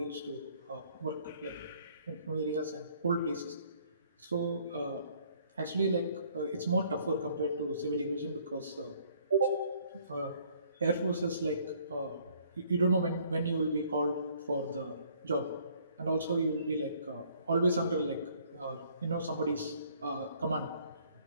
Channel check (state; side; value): inverted; both; correlation -0.61